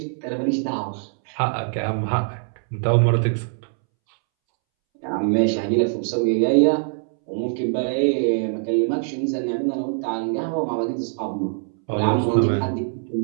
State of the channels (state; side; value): silent; left; 63 dB below the other